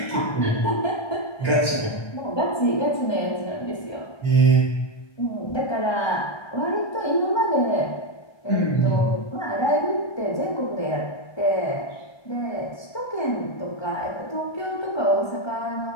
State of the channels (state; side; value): late; right; 1.3 ms